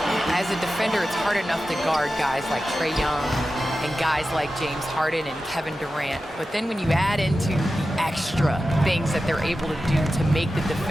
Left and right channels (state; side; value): normal; both; correlation 0.93